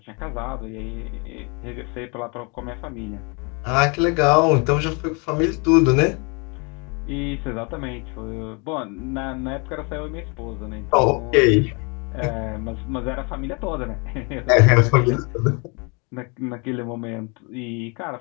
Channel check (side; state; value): right; quieter; 32.0 dB